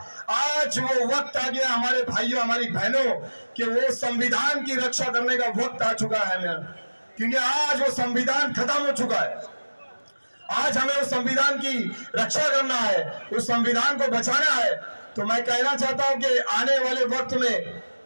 आज वो वक्त आ गया हमारे भाइयों हमारी बहनों कि वो संविधान की रक्षा करने का वक्त आ चुका है क्योंकि आज वो संविधान खत्म हो चुका है। आज हमें उस संविधान की रक्षा करना है, उस संविधान को बचाना है। तो मैं कहना चाहता हूं कि आने वाले वक्त में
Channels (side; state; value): both; inverted; correlation -1.00